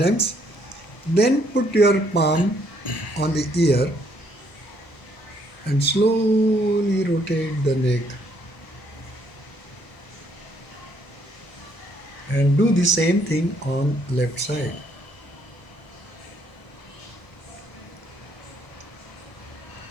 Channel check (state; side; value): late; right; 1.0 ms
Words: Then put your palm on the ear and slowly rotate the neck. And do the same thing on left side.